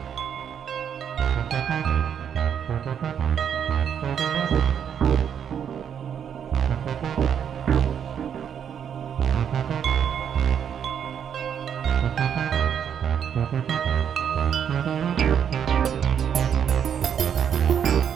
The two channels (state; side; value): quieter; left; 8.3 dB